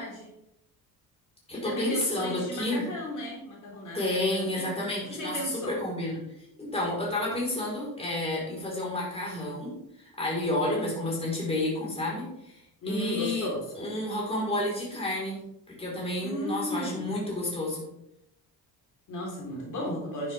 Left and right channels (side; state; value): both; normal; correlation 0.21